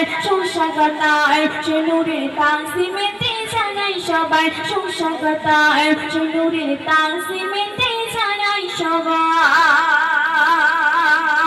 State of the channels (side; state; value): both; identical; correlation 1.00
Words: সুস্বাগত। সে নূরের তানজিমেতে জানাই সবাই সুস্বাগত। সে নূরের তানজিমেতে জানাই সবাই